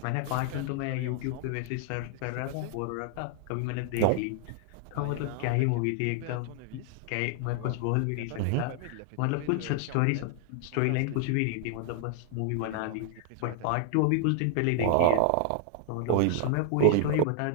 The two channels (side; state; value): both; different; correlation 0.00